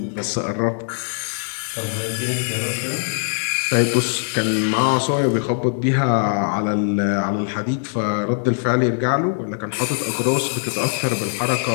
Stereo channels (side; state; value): right; silent; digital silence